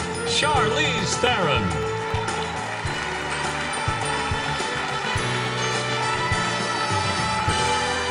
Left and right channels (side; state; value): both; identical; correlation 1.00